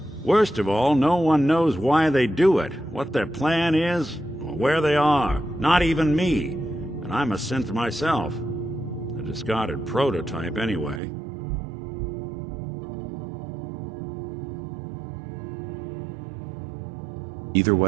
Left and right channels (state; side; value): drops out; left; at 11.0 s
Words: Worst of all, no one knows why they do it, what their plan is, or where they are. Not even me. And I'm a synth myself. A discarded prototype, anyway. Either